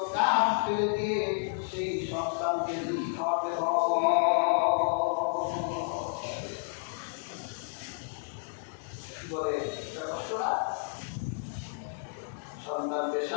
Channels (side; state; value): right; silent; digital silence